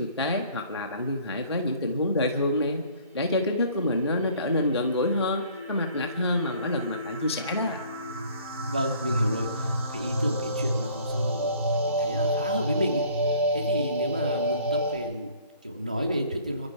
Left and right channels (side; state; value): both; inverted; correlation -0.55